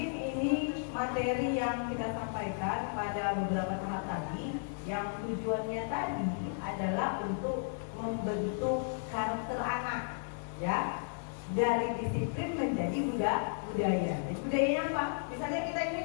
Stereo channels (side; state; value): right; silent; digital silence